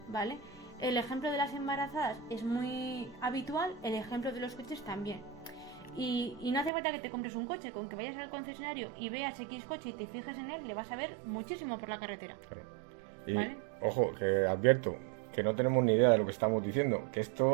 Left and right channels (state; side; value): drops out; left; at 6.7 s